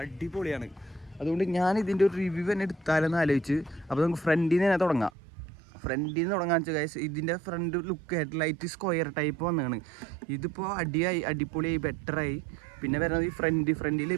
അടിപൊളിയാണ്. അതുകൊണ്ട് ഞാൻ ഇതിൻ്റെ ഒരു റിവ്യൂ തന്നെ എടുത്താലെന്ന് ആലോചിച്ച്. അപ്പോൾ നമുക്ക് ഫ്രണ്ടിൽ നിന്ന് തന്നെ തുടങ്ങാം. ഫ്രണ്ടിൽ നിന്ന് തുടങ്ങാന്ന് വെച്ചാൽ ഗൈസ് ഇതിൻ്റെ front look headlight square type വന്നതാണ്. ഇതിപ്പോൾ അടിപൊളിയായി ബെറ്ററായി. പിന്നെ വരുന്നത് ഈ ഫ്രണ്ടിൽ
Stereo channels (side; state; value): left; drops out; at 5.1 s